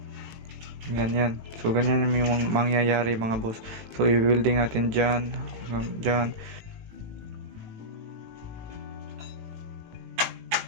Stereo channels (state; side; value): late; left; 18 ms